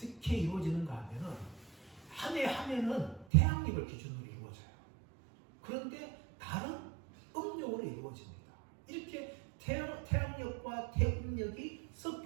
이루어지는가 하면은 한 해 한 해는 태양력을 기준으로 이루어져요. 그런데 다른 음력으로 이루어집니다. 이렇게 태양력과 태음력이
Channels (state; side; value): drops out; left; at 3.2 s